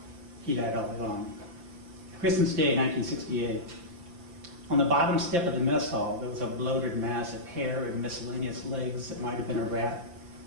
He died all along. Christmas Day, 1968. On the bottom step of the mess hall, there was a bloated mass of hair and miscellaneous legs that might have been a rat,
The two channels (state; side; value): late; left; 5.8 ms